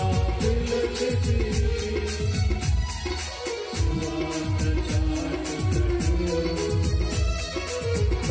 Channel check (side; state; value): both; identical; correlation 1.00